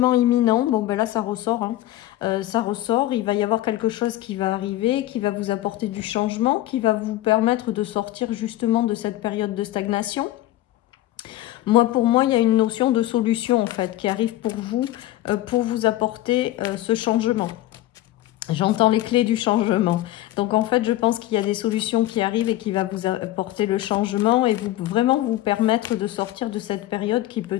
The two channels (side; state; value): right; quieter; 15.1 dB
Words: imminent, bon ben là ça ressort, hein. Ça ressort, il va y avoir quelque chose qui va arriver, qui va vous apporter du changement, qui va vous permettre de sortir justement de cette période de stagnation. Moi, pour moi, il y a une notion de solution en fait qui arrive pour vous apporter ce changement. J'entends les clés du changement. Donc en fait, je pense qu'il y a des solutions qui arrivent et qui va vous apporter le changement et vraiment vous permettre de sortir de cette période qui